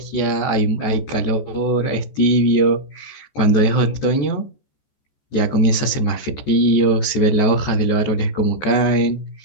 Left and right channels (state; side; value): late; right; 14 ms